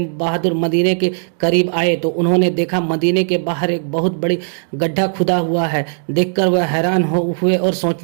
मदीने के करीब आए तो उन्होंने देखा मदीने के बाहर एक बहुत बड़ी गड्ढा खुदा हुआ है। देखकर वह हैरान हुए और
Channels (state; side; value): silent; left; digital silence